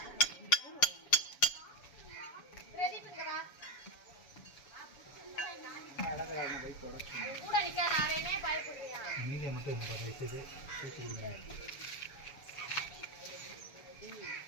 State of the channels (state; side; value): late; right; 7.0 ms